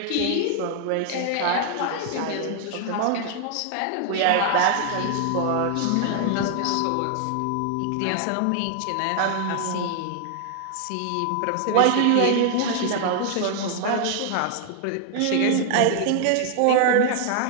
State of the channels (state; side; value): different; both; correlation 0.00